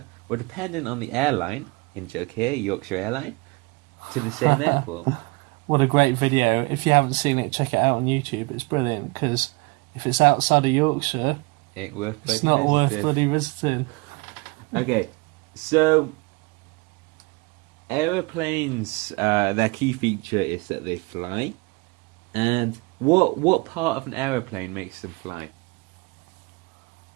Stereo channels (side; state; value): left; quieter; 26.2 dB